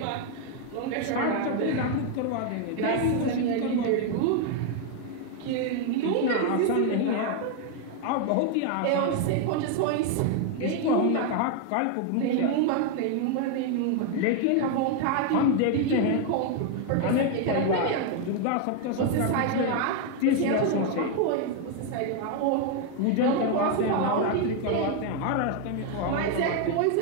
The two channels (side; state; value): both; different; correlation 0.01